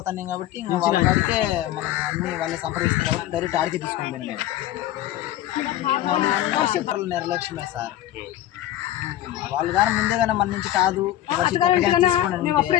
కాబట్టి ఇంకా వాళ్ళ కాడికే మనం అన్ని వాళ్ళే సంప్రదిస్తారు కాబట్టి డైరెక్ట్ ఆడికే తీసుకొని పోయినా నేను. నిర్లక్ష్యమే సార్, వాళ్ళు కానీ ముందే కానీ మన నుంచి కాదు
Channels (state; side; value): quieter; right; 13.4 dB